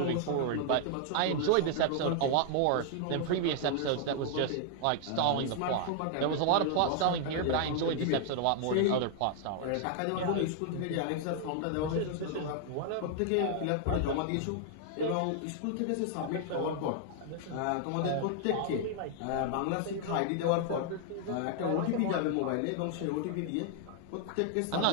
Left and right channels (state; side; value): different; both; correlation 0.00